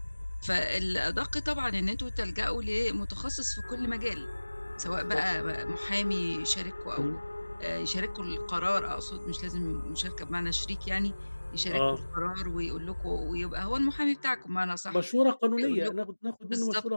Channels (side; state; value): both; inverted; correlation -1.00